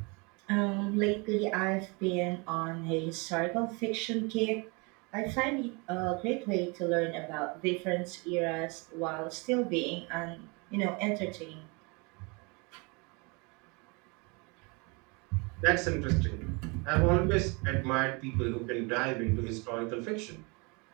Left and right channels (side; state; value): left; quieter; 29.8 dB